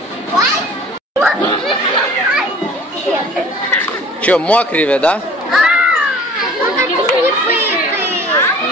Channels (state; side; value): normal; both; correlation 0.48